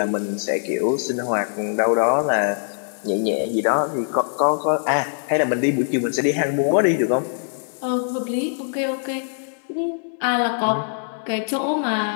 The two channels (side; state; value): right; silent; digital silence